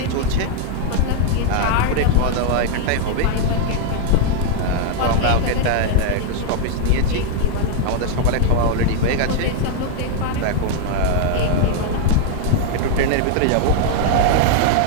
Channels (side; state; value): both; different; correlation 0.00